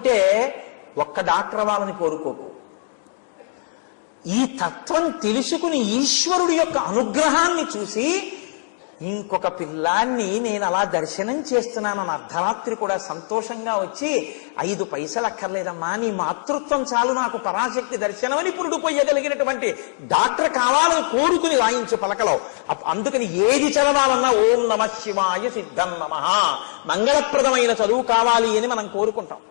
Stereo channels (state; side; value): silent; right; digital silence